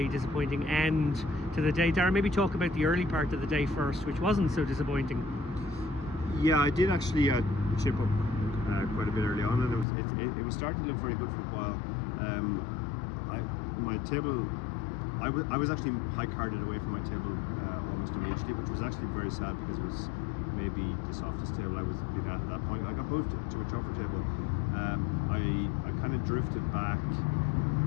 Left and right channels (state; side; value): drops out; right; at 9.9 s